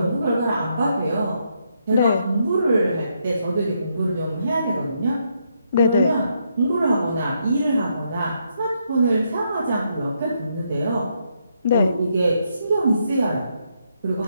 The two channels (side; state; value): both; inverted; correlation -0.77